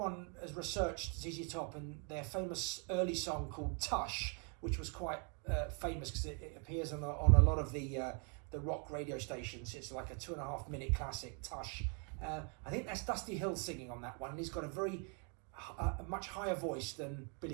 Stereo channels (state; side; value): quieter; left; 38.2 dB